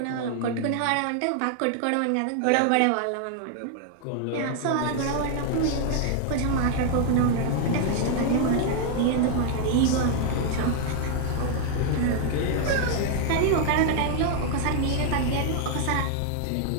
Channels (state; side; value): different; both; correlation 0.00